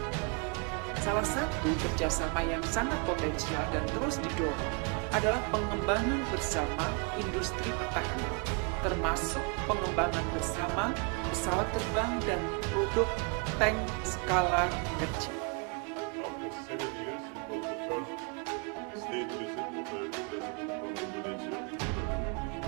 Salah satu kerjasama yang sangat potensial dan terus didorong adalah pengembangan bersama industri pertahanan, termasuk pengembangan bersama pesawat terbang dan produk tank skala kecil. After 7 years, it was the first state visit of the President from Indonesia.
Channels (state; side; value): quieter; left; 35.6 dB